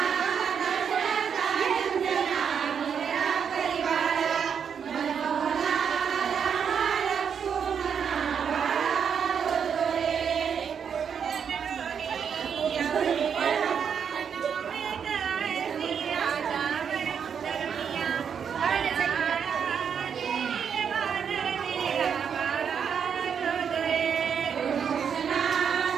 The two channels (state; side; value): quieter; left; 7.3 dB